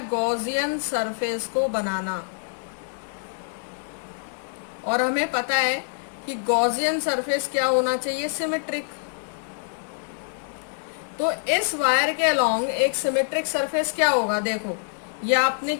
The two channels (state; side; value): silent; right; digital silence